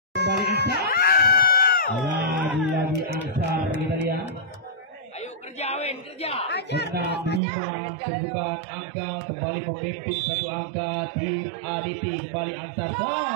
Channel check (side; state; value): left; drops out; at 7.4 s